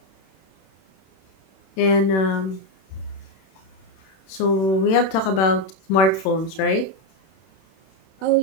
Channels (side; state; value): right; late; 31 ms